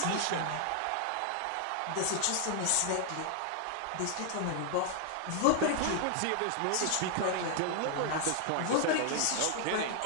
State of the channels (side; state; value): both; different; correlation 0.00